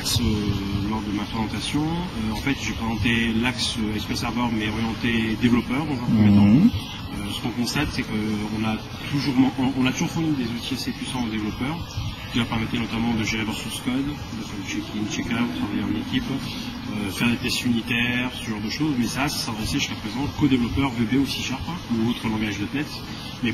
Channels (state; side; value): identical; both; correlation 1.00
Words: lors de ma présentation. En fait, j'ai présenté l'axe SQL Server, mais orienté développeur dans un premier temps. Ce qu'on constate, c'est qu'on a toujours fourni des outils assez puissants aux développeurs, qui leur permettaient notamment de gérer leur source code, de faire du check-in, check-out, travailler en équipe, faire des tests unitaires, ce genre de choses. Mais ça s'adressait jusqu'à présent qu'aux développeurs VB ou C# ou autres langages .NET, mais